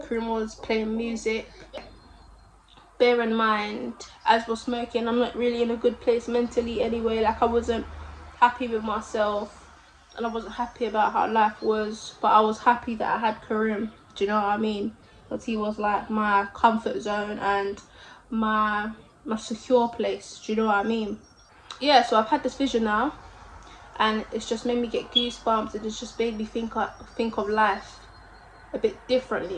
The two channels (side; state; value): both; identical; correlation 1.00